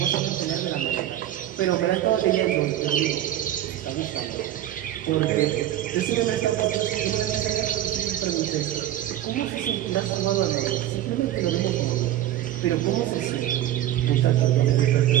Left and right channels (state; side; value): quieter; left; 12.6 dB